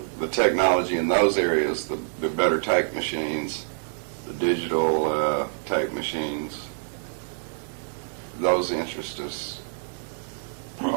the technology in those areas, the better tape machines, the digital tape machines, those interest us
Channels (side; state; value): left; silent; digital silence